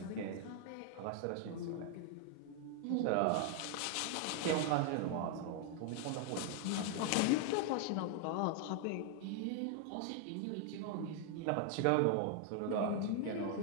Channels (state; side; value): different; both; correlation 0.00